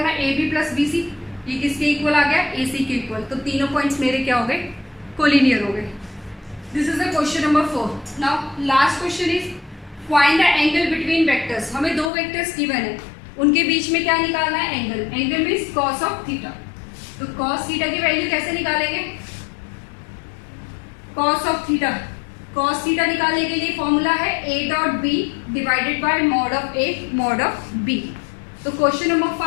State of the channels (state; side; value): drops out; right; at 12.1 s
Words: है, AB प्लस BC ये किसके इक्वल आ गया, AC के इक्वल। तो तीनों पॉइंट्स मेरे क्या हो गए, कोलिनियर हो गए। This is the question number 4। Now last question is find the angle between vectors. हमें दो वेक्टर्स गिवन है, उनके बीच में क्या निकालना है, angle. Angle means cos of theta. तो कॉस थीटा की वैल्यू कैसे निकालेंगे, cos of theta. Cos theta निकालने के लिए फॉर्मूला है a dot B divided by mod of a mod of b। तो क्वेश्चन नंबर